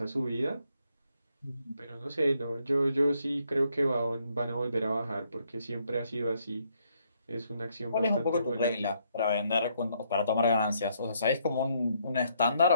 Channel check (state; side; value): inverted; both; correlation -0.72